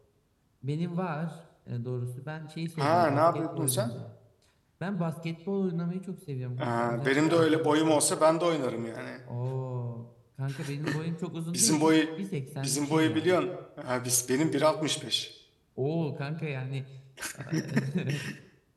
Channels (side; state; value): both; identical; correlation 1.00